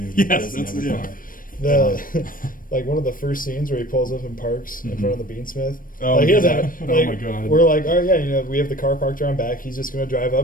doesn't have a car. Like one of the first scenes where he pulls up and parks in front of the Beansmith. Oh, like, oh my God. We're like, all right, we have the car parked around back. He's just going to drive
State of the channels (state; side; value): late; right; 0.40 ms